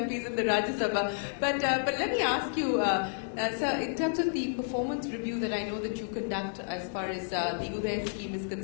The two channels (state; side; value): silent; right; 57 dB below the other